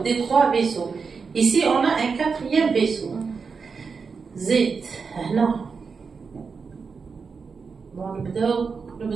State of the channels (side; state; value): left; quieter; 5.2 dB